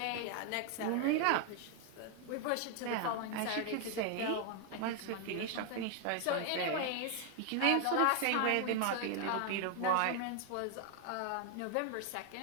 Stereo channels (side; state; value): both; different; correlation 0.00